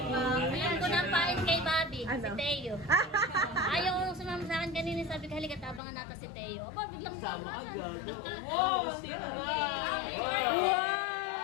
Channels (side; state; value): right; drops out; at 5.8 s